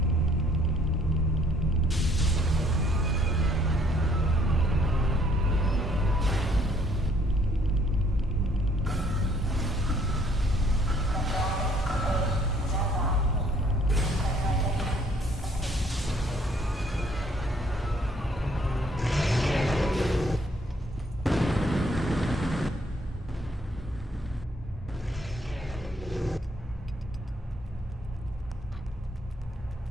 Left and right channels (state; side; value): normal; both; correlation 0.64